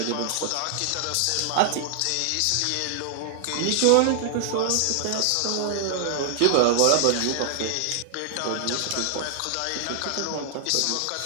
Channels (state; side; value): different; both; correlation 0.00